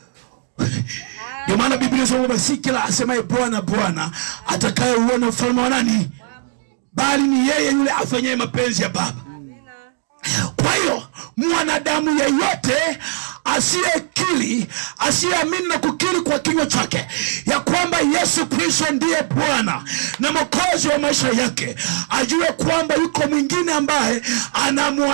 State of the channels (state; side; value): silent; left; 66 dB below the other